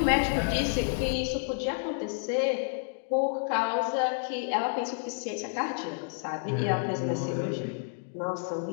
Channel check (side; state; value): right; silent; digital silence